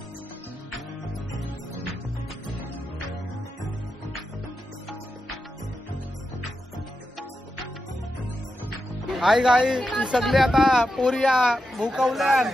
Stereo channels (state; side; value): normal; both; correlation 0.88